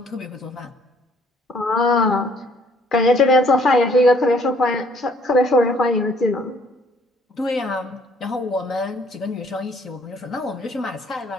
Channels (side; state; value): both; normal; correlation 0.61